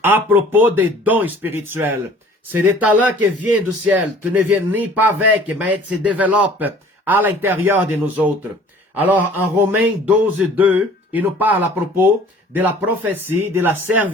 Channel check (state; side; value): normal; both; correlation 0.50